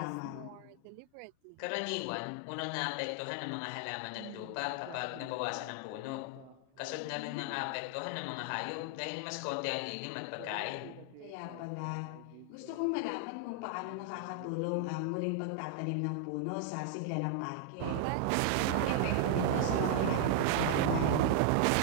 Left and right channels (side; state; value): both; different; correlation 0.00